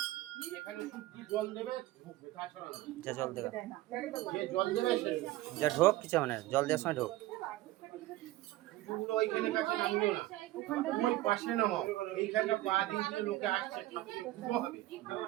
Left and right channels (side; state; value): left; quieter; 16.8 dB